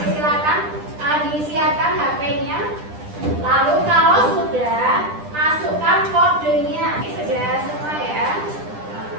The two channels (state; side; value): late; left; 10 ms